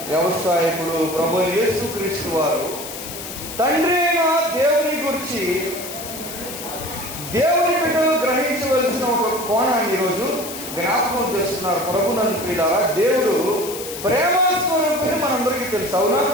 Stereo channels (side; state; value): left; noise; hiss, 10 dB below the sound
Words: వ్యవసాయకుడు. ప్రభు యేసుక్రీస్తు వారు తండ్రి అయిన దేవుని గురించి దేవుని బిడ్డలు గ్రహించవలసిన ఒక కోణాన్ని ఈరోజు జ్ఞాపకం చేస్తున్నారు. ప్రభునందు ప్రియులారా, దేవుడు ప్రేమస్వరూపిణి మనందరికీ తెలుసు, అవునా?